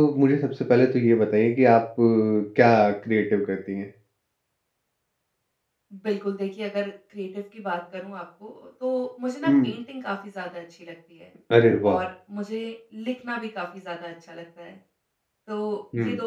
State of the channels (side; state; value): both; identical; correlation 1.00